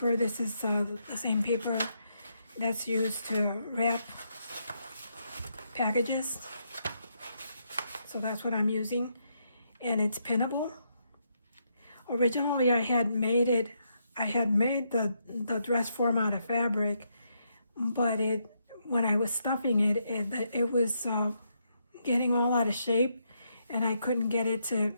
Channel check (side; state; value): both; inverted; correlation -0.78